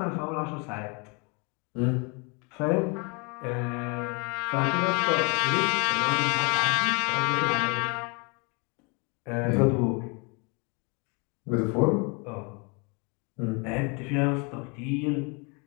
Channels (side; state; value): right; quieter; 32.1 dB